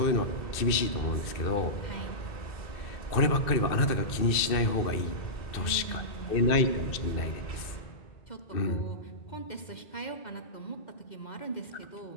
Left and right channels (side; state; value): right; late; 2.6 ms